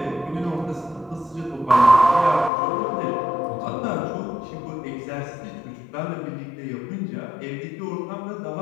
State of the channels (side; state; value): right; drops out; at 2.5 s